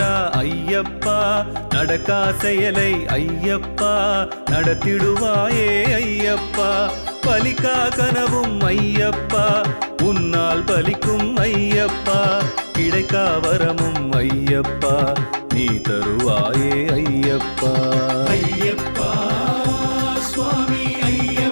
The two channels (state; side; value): inverted; both; correlation -1.00